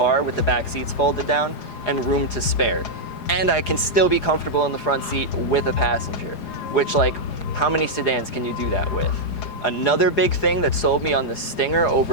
with the back seats folded down and room to spare. And I can still be comfortable in the front seat with a passenger, which, like, how many sedans can you do that with? Another big thing that sold me on the Stinger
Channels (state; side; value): late; right; 4.9 ms